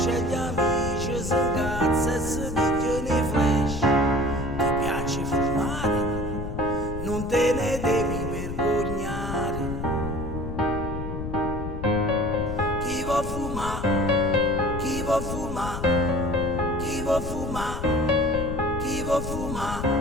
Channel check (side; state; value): left; noise; rumble, 6 dB below the sound